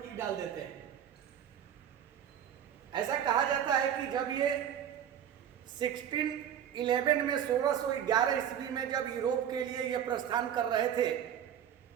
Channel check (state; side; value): quieter; left; 9.5 dB